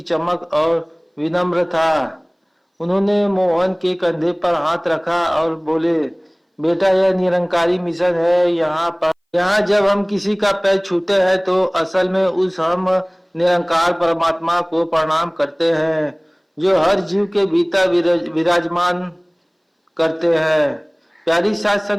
चमक और विनम्र था। उन्होंने मोहन के कंधे पर हाथ रखा और बोले, बेटा, यह निरंकारी मिशन है। यहाँ जब हम किसी का पैर छूते हैं तो असल में उस हम निरंकार परमात्मा को प्रणाम करते हैं, जो हर जीव के भीतर विराजमान करते हैं। प्यारी साथ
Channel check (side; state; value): both; identical; correlation 1.00